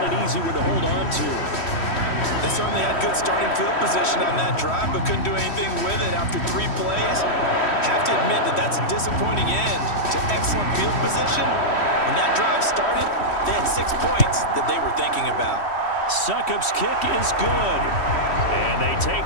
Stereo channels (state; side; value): late; right; 3.1 ms